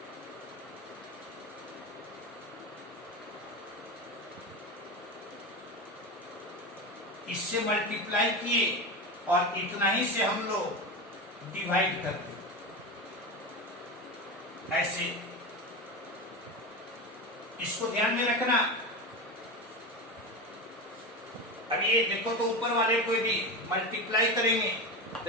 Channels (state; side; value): normal; both; correlation 0.22